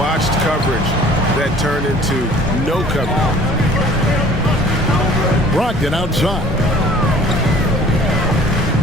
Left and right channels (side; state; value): both; normal; correlation 0.51